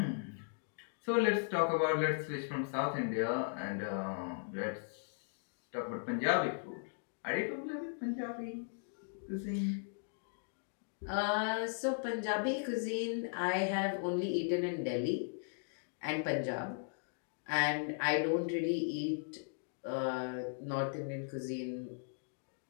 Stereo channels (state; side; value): silent; right; digital silence